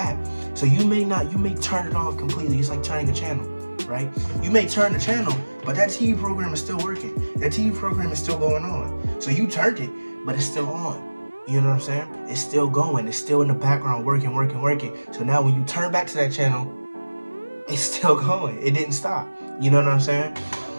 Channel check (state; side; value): inverted; both; correlation -1.00